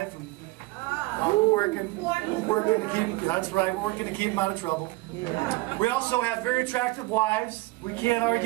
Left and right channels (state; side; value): quieter; left; 21.2 dB